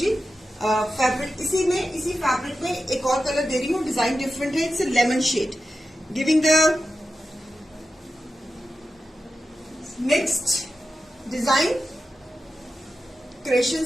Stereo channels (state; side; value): normal; both; correlation 0.91